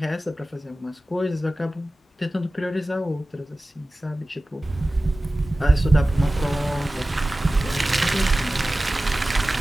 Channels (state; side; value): normal; both; correlation 0.96